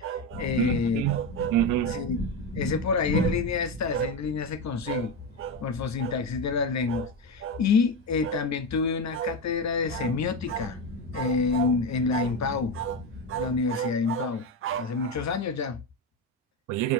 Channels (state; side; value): normal; both; correlation 0.15